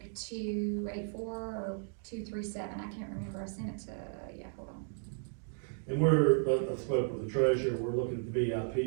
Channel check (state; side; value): silent; left; digital silence